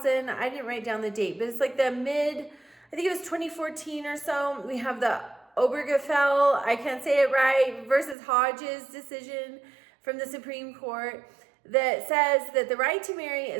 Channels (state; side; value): drops out; left; at 8.2 s